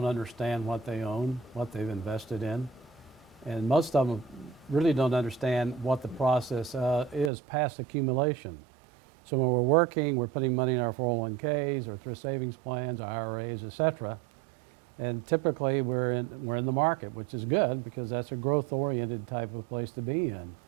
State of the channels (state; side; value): drops out; left; at 7.3 s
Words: understand what they own, what they've invested in. And most of them really don't understand what the process is past accumulation. So when we're working, we're putting money in our 401ks or thrift savings plans, IRAs, etc. And typically we're in the market, which is good because that's a growth-oriented type of place to be in.